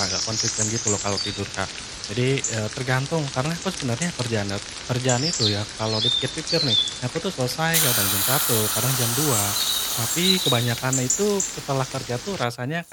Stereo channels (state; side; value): identical; both; correlation 1.00